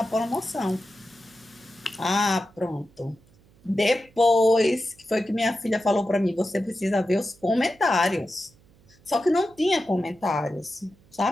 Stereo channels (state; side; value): noise; right; hum, 29 dB below the sound